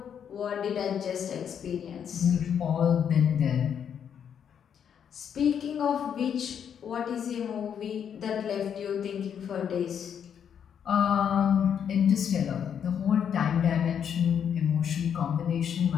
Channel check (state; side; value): quieter; right; 8.2 dB